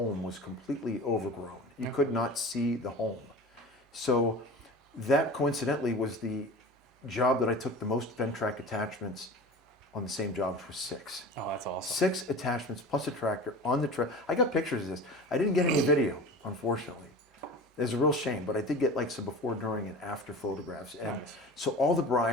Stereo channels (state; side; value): normal; both; correlation 0.35